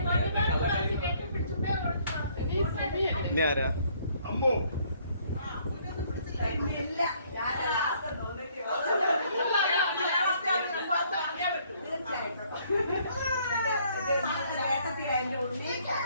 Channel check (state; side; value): inverted; both; correlation -0.64